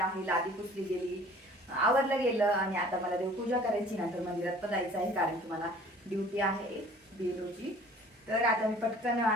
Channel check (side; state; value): both; normal; correlation 0.50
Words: आहे. लादी पुसली गेली, आवरलं गेलं आणि आता मला देवपूजा करायची. नंतर मंदिरात पण जायचं आहे कारण की मला ड्युटी आहे बेलोची. तर आता मी पटकन